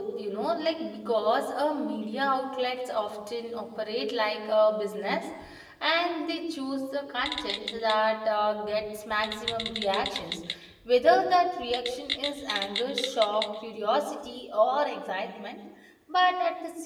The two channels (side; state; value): both; identical; correlation 1.00